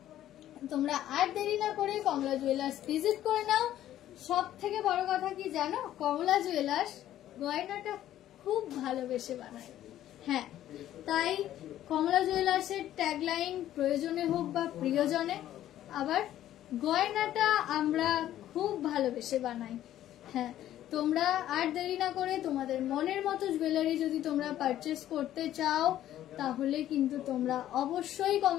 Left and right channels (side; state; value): right; quieter; 12.5 dB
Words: তোমরা আর দেরি না করে কমলা জুয়েলার্স ভিজিট করে নাও। সব থেকে বড় কথা কি জানো, কমলা জুয়েলার্স গয়নাটা খুব ভালোবেসে বানায়। হ্যাঁ, তাই কমলা জুয়েলার্সের ট্যাগলাইন প্রয়োজনে হোক বা প্রিয়জনে, আবার গয়নাটা আমরা খুব ভালোবেসে বানাই। হ্যাঁ, তোমরা আর দেরি না করে তোমাদের মনের মতো জুয়েলারি যদি তোমরা পারচেস করতে চাও তাহলে কিন্তু তোমরা অবশ্যই